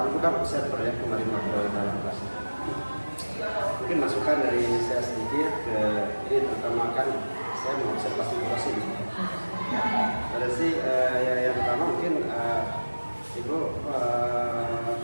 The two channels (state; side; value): inverted; both; correlation -1.00